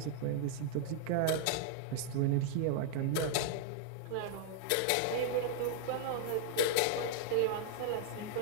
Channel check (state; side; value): different; both; correlation -0.01